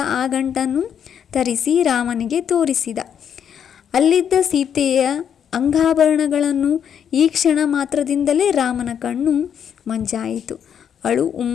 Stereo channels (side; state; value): right; quieter; 8.4 dB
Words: ಆ ಗಂಟನ್ನು ತರಿಸಿ ರಾಮನಿಗೆ ತೋರಿಸಿದ. ಅಲ್ಲಿದ್ದ ಸೀತೆಯ ಅಂಗಾಭರಣಗಳನ್ನು ಈ ಕ್ಷಣ ಮಾತ್ರದಿಂದಲೇ ರಾಮನ ಕಣ್ಣು ಮಂಜಾಯಿತು, ಅಳು